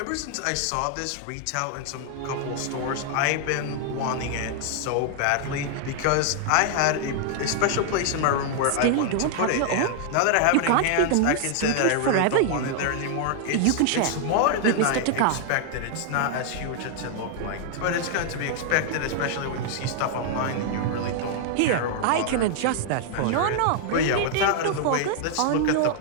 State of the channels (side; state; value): both; different; correlation 0.00